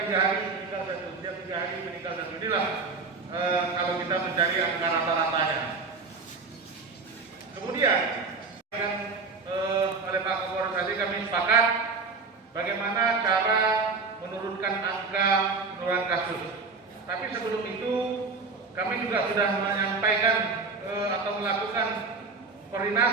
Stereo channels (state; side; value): quieter; left; 4.4 dB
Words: hari meninggal satu, setiap 3 hari meninggal satu. Inilah kalau kita mencari angka rata-ratanya. Kemudian oleh Pak Kapolres tadi kami sepakat bagaimana cara menurunkan angka penurunan kasus. Tapi sebelum itu kami juga sudah menyampaikan atau melakukan